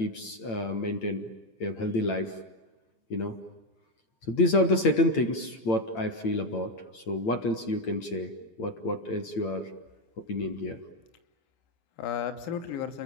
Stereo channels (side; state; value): right; late; 8.8 ms